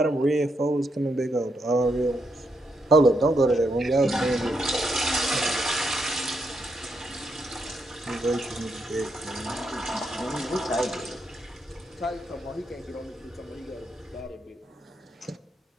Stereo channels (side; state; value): both; normal; correlation 0.80